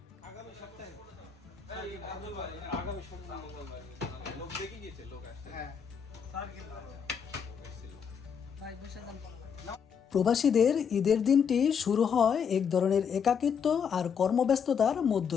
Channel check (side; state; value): right; quieter; 7.0 dB